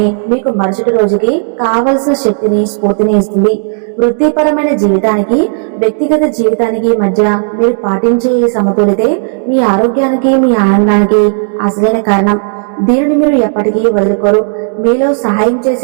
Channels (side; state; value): left; silent; digital silence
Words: మీకు మరుసటి రోజుకి కావలసిన శక్తిని, స్ఫూర్తిని ఇస్తుంది. వృత్తిపరమైన జీవితానికి, వ్యక్తిగత జీవితానికి మధ్య మీరు పాటించే ఈ సమతులితే మీ ఆరోగ్యానికి, మీ ఆనందానికి అసలైన కారణం. దీనిని మీరు ఎప్పటికీ వదులుకోరు. మీలో సహాయం